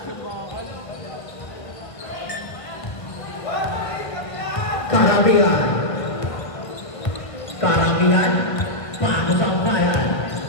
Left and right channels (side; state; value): right; late; 1.3 ms